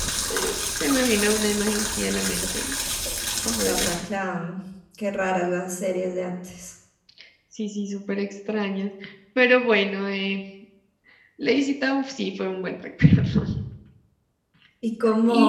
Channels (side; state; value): both; identical; correlation 1.00